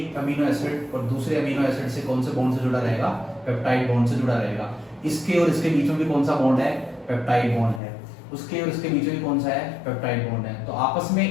अमीनो एसिड और दूसरे अमीनो एसिड से कौन से बॉन्ड से जुड़ा रहेगा? पेप्टाइड बॉन्ड से जुड़ा रहेगा। इसके और इसके बीच में भी कौन सा बॉन्ड है? पेप्टाइड बॉन्ड है। उसके और इसके बीच में कौन सा है? पेप्टाइड बॉन्ड है। तो आपस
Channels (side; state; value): right; drops out; at 7.8 s